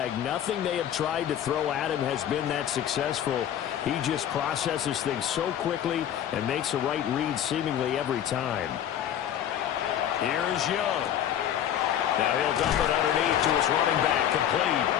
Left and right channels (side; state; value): right; quieter; 10.3 dB